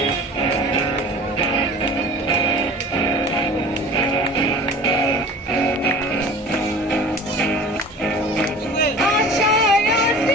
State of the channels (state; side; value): normal; both; correlation 0.42